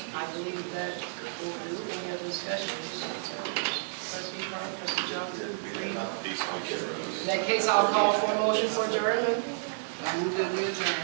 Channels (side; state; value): left; silent; digital silence